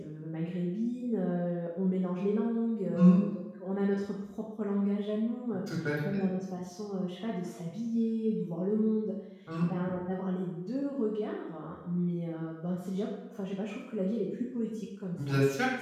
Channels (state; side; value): identical; both; correlation 1.00